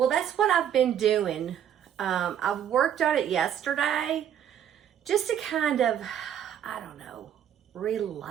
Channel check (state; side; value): quieter; left; 9.6 dB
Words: that's what I've been doing. I worked on it yesterday just to kind of, I don't know,